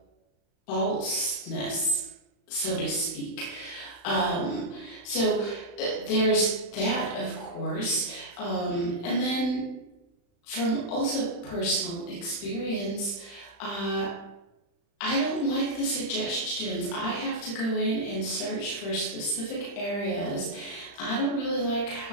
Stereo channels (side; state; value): right; late; 35 ms